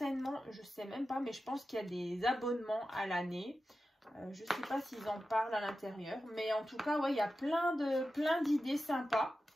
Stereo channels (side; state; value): both; normal; correlation 0.92